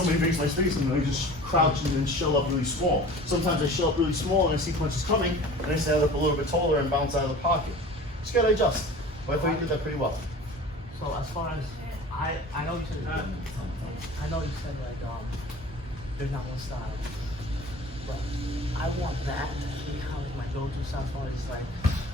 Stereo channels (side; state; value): both; normal; correlation 0.41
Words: makes my space and I just crouch and then shell up really small. Sometimes I shell up really small and I see punches coming and I stand up a little bit taller and bounce out of the pocket. Just gotta adjust. But I thought you did that pretty well. So as far as, I know you said, like, there's not one style, but I want that to be kind of my go-to style as far as like